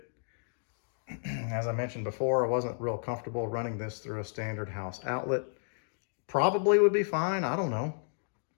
As I mentioned before, I wasn't real comfortable running this through a standard house outlet. Probably would be fine, I don't know.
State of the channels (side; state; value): right; silent; digital silence